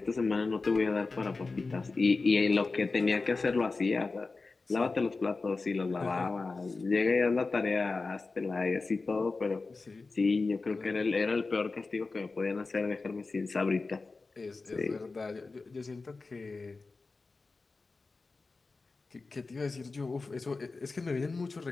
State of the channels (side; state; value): right; quieter; 3.9 dB